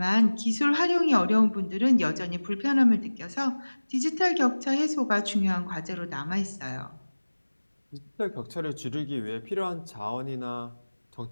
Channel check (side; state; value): both; inverted; correlation -1.00